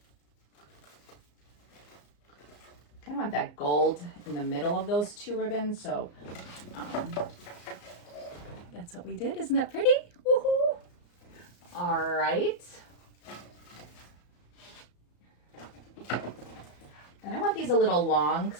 I want that gold in the middle of those two ribbons, so that's what we did. Isn't that pretty? Woohoo! All right. And I want these a little long because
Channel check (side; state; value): right; late; 34 ms